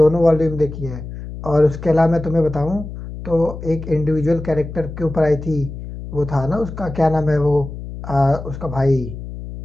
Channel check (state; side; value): noise; left; hum, 10 dB below the sound